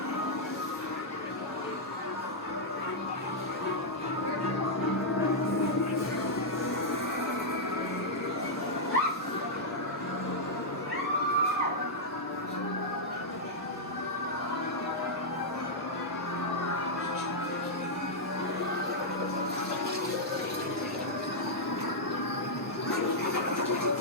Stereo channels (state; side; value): normal; both; correlation -0.06